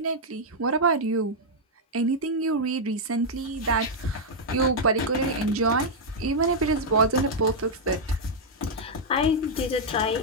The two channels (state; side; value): normal; both; correlation -0.04